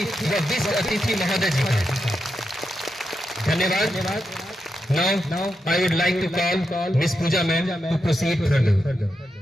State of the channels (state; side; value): normal; both; correlation 0.86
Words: व विशिष्ट अतिथि महोदय जी का। धन्यवाद। Now I would like to call Miss Pooja ma'am to proceed further.